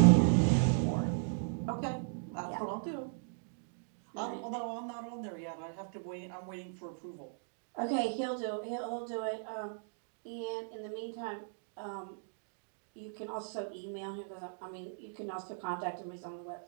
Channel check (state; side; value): silent; left; digital silence